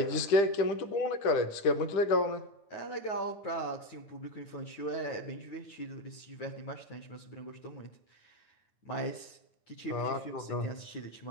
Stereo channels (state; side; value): late; right; 9.4 ms